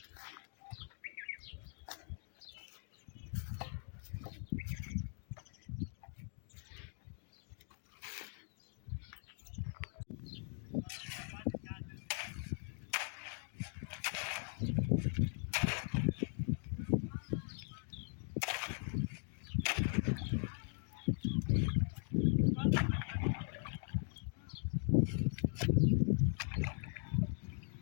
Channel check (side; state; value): right; silent; 51 dB below the other